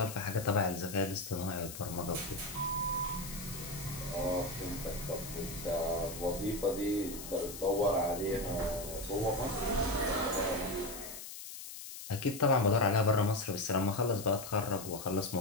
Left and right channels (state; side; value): noise; left; hiss, 11 dB below the sound